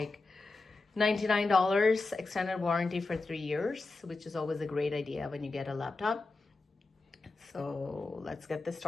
$99, extended warranty for 3 years, which is always a great idea when you get a laptop. So let's get this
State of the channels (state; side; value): quieter; right; 3.5 dB